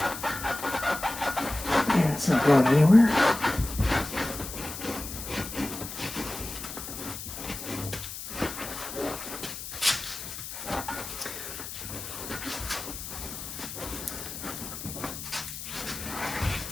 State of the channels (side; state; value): left; noise; hiss, 9 dB below the sound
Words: It's not going anywhere.